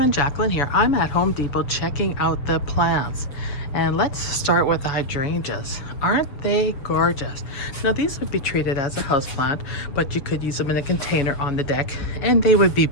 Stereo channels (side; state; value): right; late; 7.1 ms